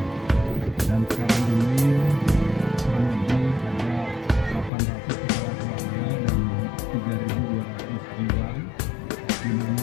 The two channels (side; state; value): right; drops out; at 4.7 s